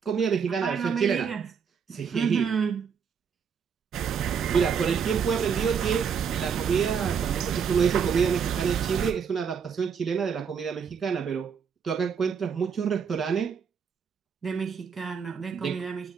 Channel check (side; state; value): left; quieter; 6.8 dB